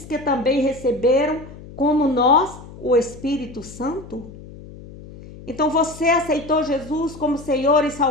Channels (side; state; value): left; noise; hum, 17 dB below the sound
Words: que também receberam, como nós, o Espírito Santo? Então você aceitou Jesus como Senhor e